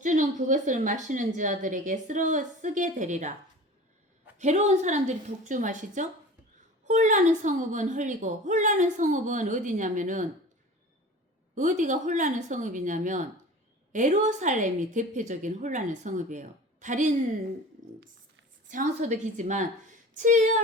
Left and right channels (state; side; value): normal; both; correlation 0.38